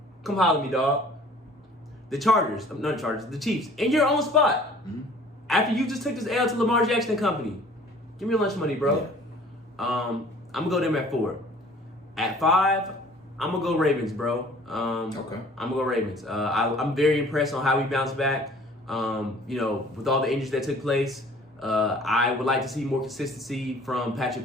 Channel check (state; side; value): normal; both; correlation 0.51